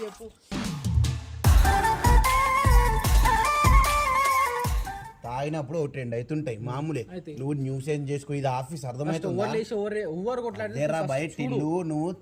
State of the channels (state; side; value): identical; both; correlation 1.00